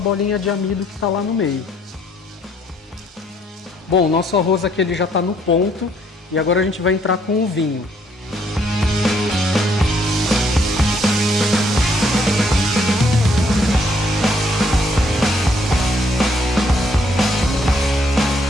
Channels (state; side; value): normal; both; correlation 0.67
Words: de amido que está lá no meio. Bom, o nosso arroz aqui ele já está no ponto e agora a gente vai entrar com o vinho.